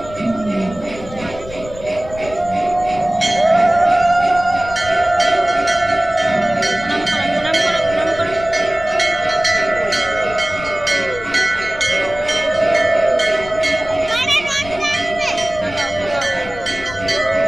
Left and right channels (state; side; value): noise; left; rumble, 15 dB below the sound